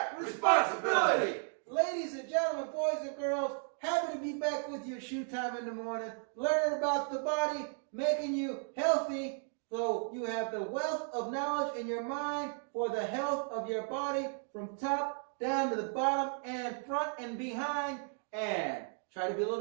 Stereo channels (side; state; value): left; silent; 55 dB below the other